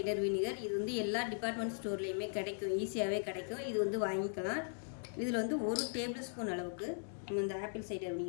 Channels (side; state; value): right; silent; digital silence